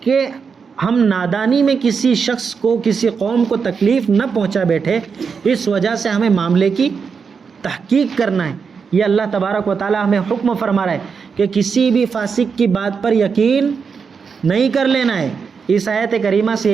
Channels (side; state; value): left; quieter; 5.8 dB